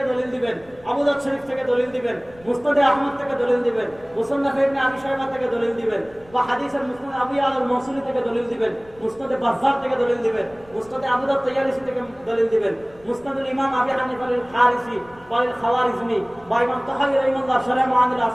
দলিল দিবেন, আবু দাউদ শরীফ থেকে দলিল দিবেন, মুসনাদে আহমদ থেকে দলিল দিবেন, মুসান্নাফ ইবনে আবি শাইবা থেকে দলিল দিবেন, বা হাদিসের মুসনাদ আবু ইয়ালা আল-মাওসুলি থেকে দলিল দিবেন, মুসনাদে বাজ্জার থেকে দলিল দিবেন, মুসনাদে আবু দাউদ তায়ালিসি থেকে দলিল দিবেন, মুসনাদুল ইমাম আবি হানিফা আল-খারিসি ওয়া আল-খাওয়ারিজমি, বা ইমাম তাহাবী রাহিমাহুল্লাহ শারহ মুআনিল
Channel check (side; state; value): left; noise; rumble, 26 dB below the sound